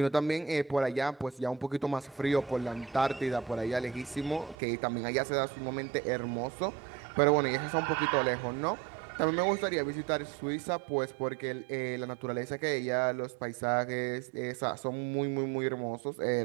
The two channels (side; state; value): left; drops out; at 4.5 s